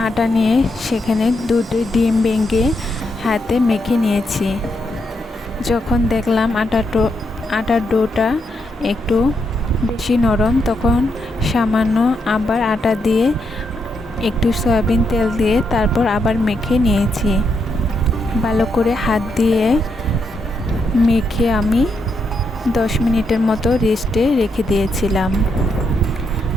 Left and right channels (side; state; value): both; normal; correlation 0.80